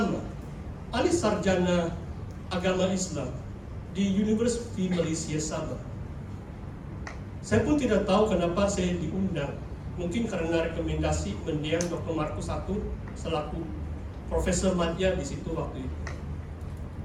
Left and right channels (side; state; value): both; identical; correlation 1.00